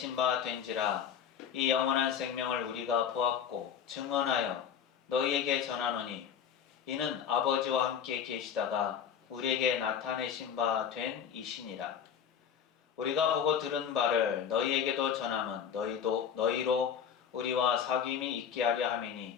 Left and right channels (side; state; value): right; quieter; 8.1 dB